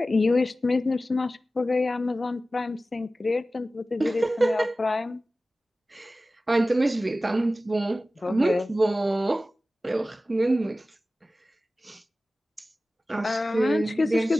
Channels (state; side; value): normal; both; correlation 0.95